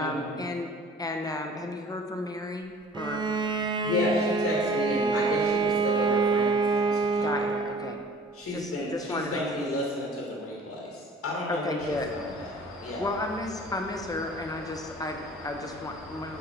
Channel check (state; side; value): normal; both; correlation 0.47